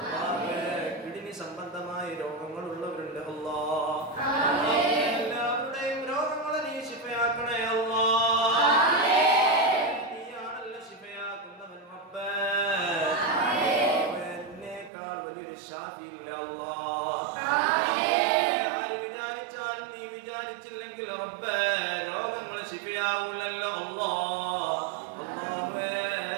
കിഡ്നി സംബന്ധമായ രോഗങ്ങളുള്ളവരുണ്ട് അല്ലാഹ്. എല്ലാവരുടെയും രോഗങ്ങളെ നീ ശിഫയാക്കണേ അല്ലാഹ്. നീയാണല്ലോ ശിഫയാക്കുന്നവൻ റബ്ബേ. എന്നേക്കാൾ വലിയൊരു ശാഫി ഇല്ല അല്ലാഹ്. ആര് വിചാരിച്ചാലും നീ വിചാരിച്ചില്ലെങ്കിൽ റബ്ബേ രോഗങ്ങൾ ശിഫയാവൂലല്ലോ അല്ലാഹ്.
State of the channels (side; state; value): left; drops out; at 14.9 s